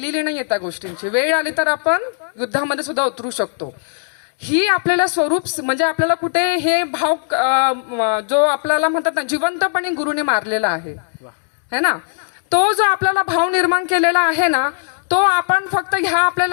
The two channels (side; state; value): right; silent; digital silence